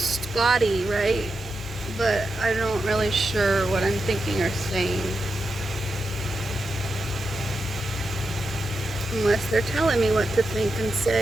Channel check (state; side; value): normal; both; correlation 0.88